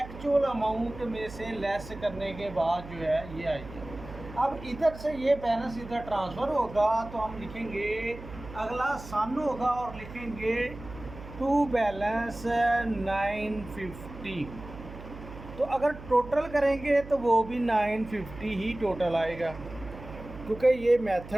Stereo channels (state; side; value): noise; right; hum, 14 dB below the sound